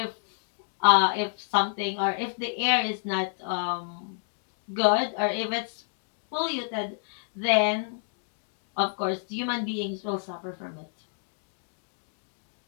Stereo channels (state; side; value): silent; right; digital silence